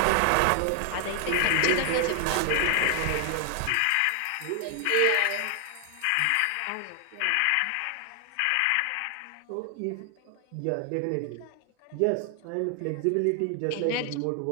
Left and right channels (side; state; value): both; different; correlation 0.00